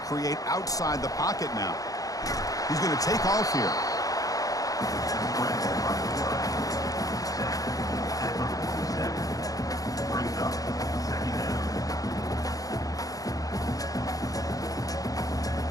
outside the pocket now. He's going to take off here.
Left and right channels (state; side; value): late; right; 0.17 ms